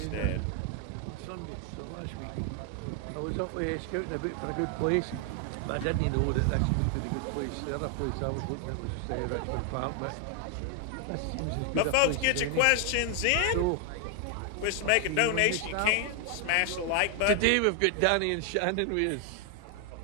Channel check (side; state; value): both; different; correlation 0.00